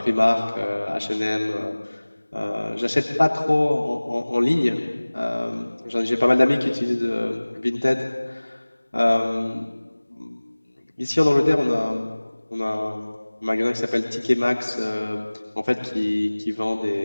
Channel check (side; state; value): both; inverted; correlation -1.00